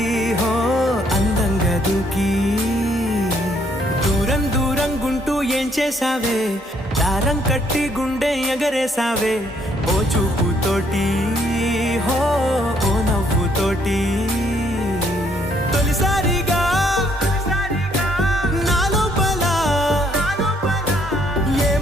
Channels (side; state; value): both; normal; correlation 0.68